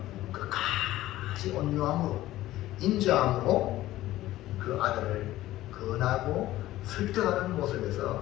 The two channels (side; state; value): right; quieter; 15.4 dB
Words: 끝까지 온유함으로 인자함으로 그 아들을 건하고 설득하는